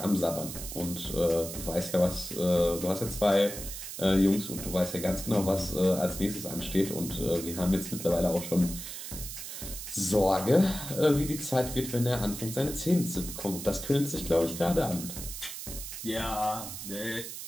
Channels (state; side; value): noise; right; hiss, 9 dB below the sound